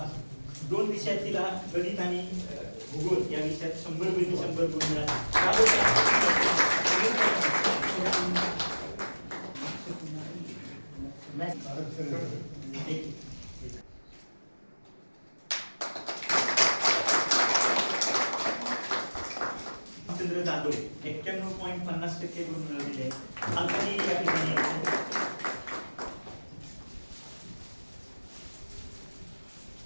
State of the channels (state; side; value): inverted; both; correlation -1.00